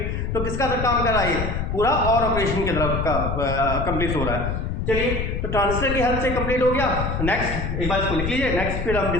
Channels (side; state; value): left; noise; rumble, 3 dB below the sound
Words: तो किसका काम कर रहा है, पूरा और ऑपरेशन की तरफ का कंप्लीट हो रहा है। चलिए तो ट्रांजिस्टर की हेल्प से कंप्लीट हो गया। नेक्स्ट एक बार इसको लिख लीजिए, नेक्स्ट फिर हम